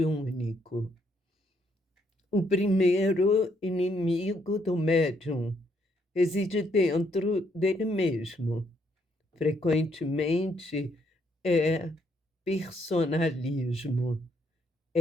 O primeiro inimigo do médium reside dentro dele mesmo. Frequentemente é personalismo,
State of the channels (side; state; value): both; normal; correlation 0.72